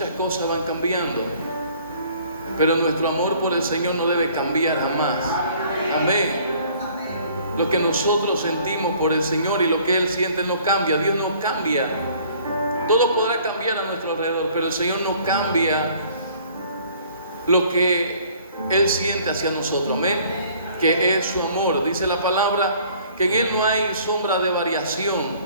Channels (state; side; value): inverted; both; correlation -0.56